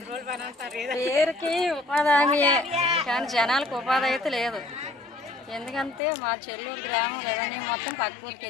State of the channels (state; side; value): drops out; right; at 6.0 s